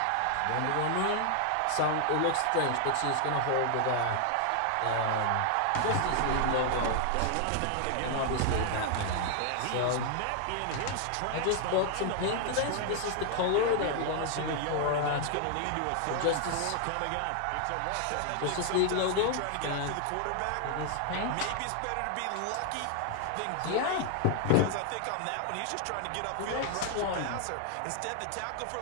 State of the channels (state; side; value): different; both; correlation 0.00